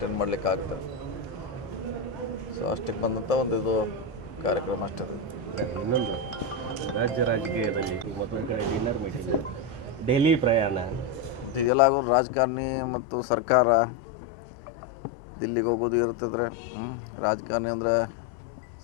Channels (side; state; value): right; drops out; at 11.7 s